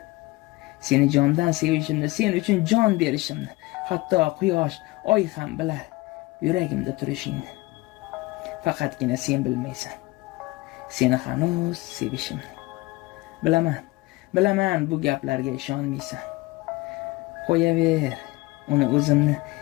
Seni jondan sevishimni, sen uchun jon berishimni, hatto quyosh, oy ham bilar yuragimda turishingni. Faqatgina sen bilmaysan. Seni hanuz sevishimni. Bilaman bu gaplarga ishonmaysan. Qo'yaver, uni o'zimni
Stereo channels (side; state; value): right; quieter; 21.4 dB